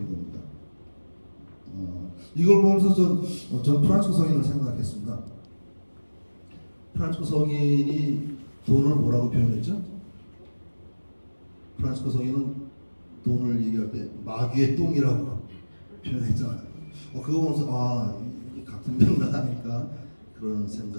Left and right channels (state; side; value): inverted; both; correlation -1.00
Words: 겁니다. 이걸 보면서 전 프란치스코 성인을 생각했습니다. 프란치스코 성인이 돈을 뭐라고 표현했죠? 프란치스코 성인은 돈을 얘기할 때 마귀의 똥이라고 표현했잖아요. 그거 보면서 이게 같은 맥락하니까 그런